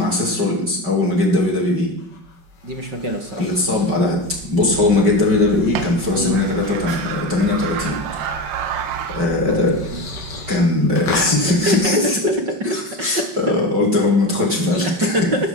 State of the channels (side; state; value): left; late; 5.2 ms